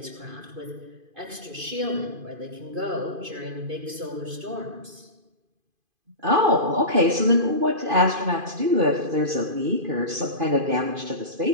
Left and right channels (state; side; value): late; left; 2.5 ms